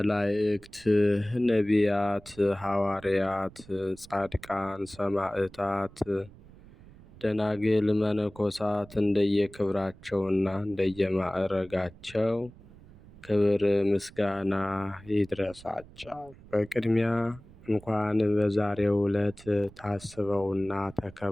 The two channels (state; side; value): noise; right; rumble, 22 dB below the sound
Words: ነቢያት፣ ሐዋርያት፣ ጻድቃን፣ ሰማዕታት፣ ደናግል፣ መነኮሳት እንደየክብራቸውና እንደየማዕረጋቸው ክብር ምስጋና ይድረሳቸው። በቅድሚያ እንኳን በዛሬው ዕለት ታስበውና